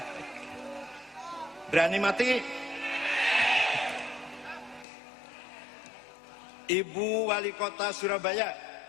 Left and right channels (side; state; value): right; drops out; at 4.9 s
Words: Berani mati? Ibu Wali Kota Surabaya,